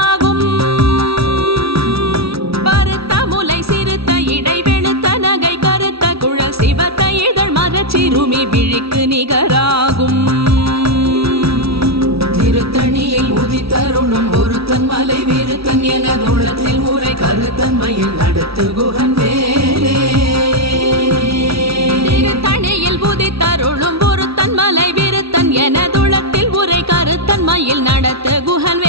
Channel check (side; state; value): left; late; 0.76 ms